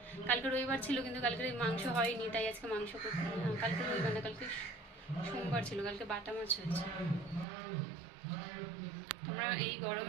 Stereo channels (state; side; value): drops out; left; at 7.5 s